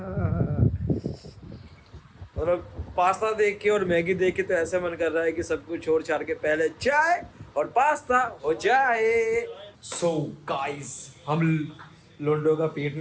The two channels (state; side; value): identical; both; correlation 1.00